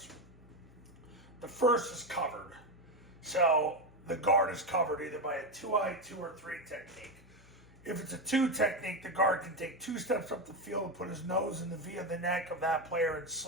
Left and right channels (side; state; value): both; normal; correlation 0.12